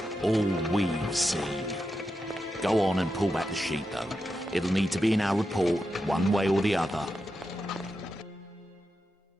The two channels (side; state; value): both; normal; correlation 0.88